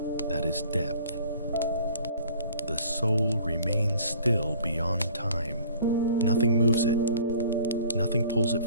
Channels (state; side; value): inverted; both; correlation -0.51